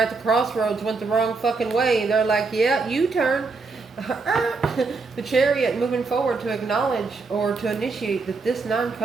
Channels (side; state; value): left; quieter; 4.2 dB